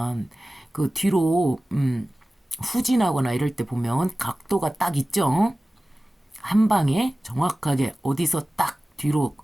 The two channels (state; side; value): normal; both; correlation 0.97